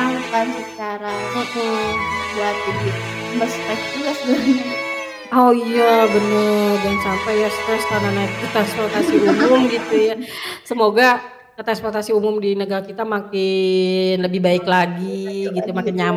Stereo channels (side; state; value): both; identical; correlation 1.00